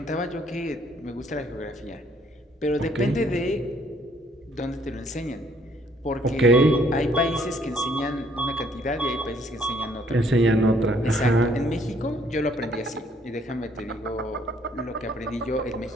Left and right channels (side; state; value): both; normal; correlation 0.65